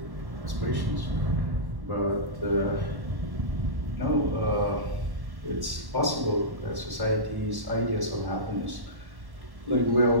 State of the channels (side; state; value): left; late; 1.1 ms